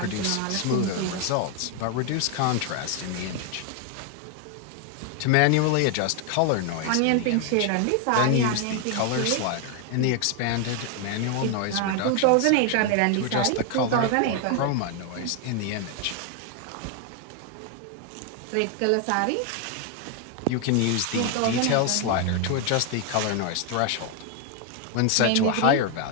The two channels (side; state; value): both; different; correlation 0.01